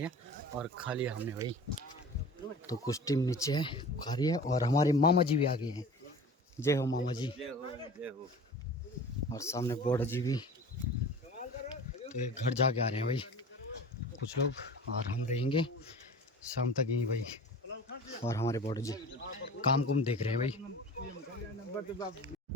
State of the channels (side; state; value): both; normal; correlation 0.39